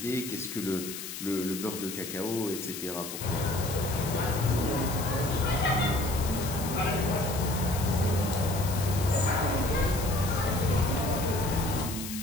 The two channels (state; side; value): noise; left; hiss, 8 dB below the sound